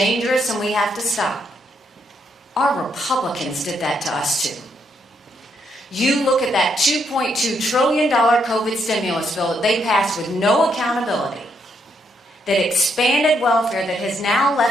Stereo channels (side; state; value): both; normal; correlation 0.76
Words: and we have to stop, our Republicans did that to us too. You look at that $2.2 trillion COVID stimulus bill that they passed with no accountability, that expanded welfare, that has now